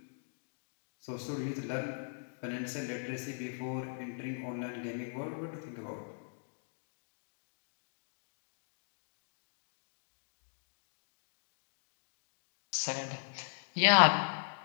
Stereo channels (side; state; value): right; silent; digital silence